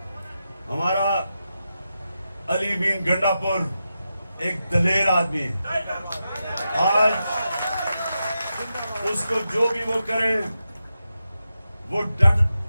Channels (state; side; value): inverted; both; correlation -0.89